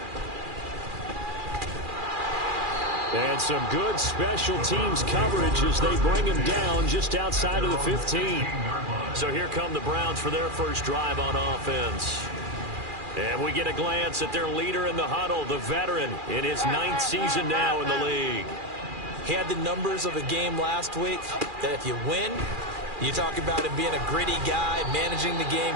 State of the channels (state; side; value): late; left; 2.4 ms